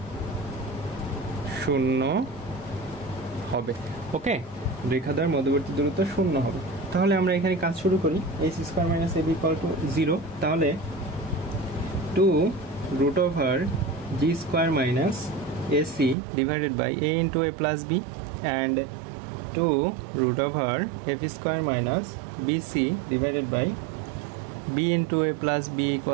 0 হবে। ওকে, রেখাদ্বয়ের মধ্যবর্তী দূরত্ব 0 হবে। তাহলে আমরা এখানে কাজ শুরু করি। H square minus A B equal to 0, তাহলে 2 root over G square minus AC divided by A into A plus B and 2 root over F square minus BC divided by B into A plus B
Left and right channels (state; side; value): drops out; left; at 16.2 s